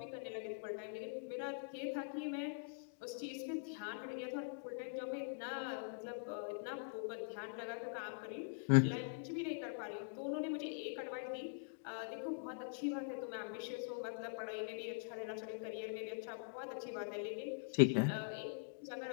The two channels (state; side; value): silent; right; digital silence